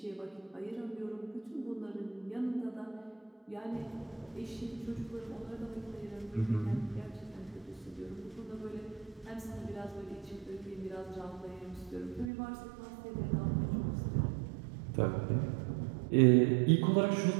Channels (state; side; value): drops out; left; at 12.3 s